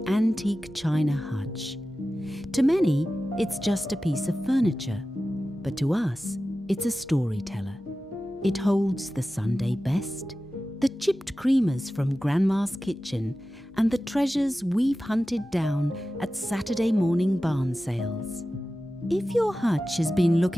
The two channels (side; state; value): both; normal; correlation 0.94